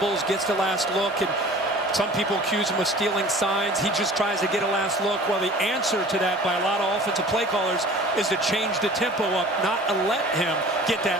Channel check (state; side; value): normal; both; correlation 0.44